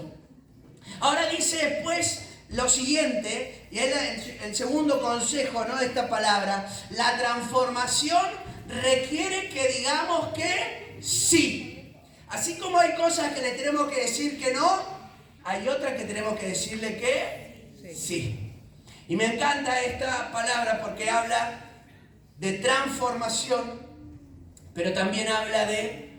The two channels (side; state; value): both; identical; correlation 1.00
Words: Ahora dice después lo siguiente, y es el segundo consejo, ¿no?, de esta palabra. La transformación requiere que digamos que sí. Así como hay cosas que le tenemos que decir que no, hay otras que tenemos que decirle que sí. Y me encanta esta palabra porque habla de transformación, pero también habla de,